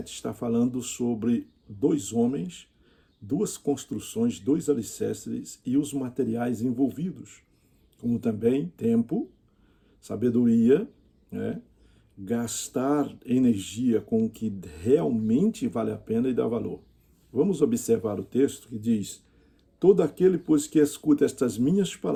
está falando sobre dois homens, duas construções, dois alicerces e os materiais envolvidos, como também tempo, sabedoria, gastar energia com o que realmente vale a pena e dá valor. Vamos observar o texto que diz: todo aquele, pois, que escuta estas minhas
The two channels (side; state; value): both; identical; correlation 1.00